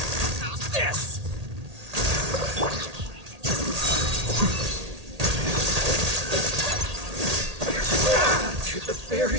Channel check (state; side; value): late; left; 1.8 ms